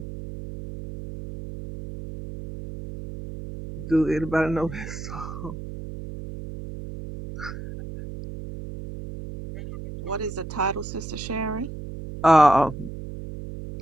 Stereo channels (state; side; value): noise; right; hum, 10 dB below the sound